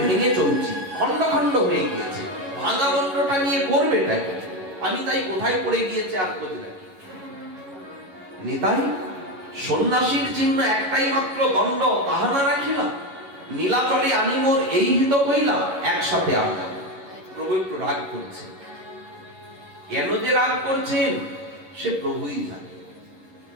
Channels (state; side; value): late; left; 11 ms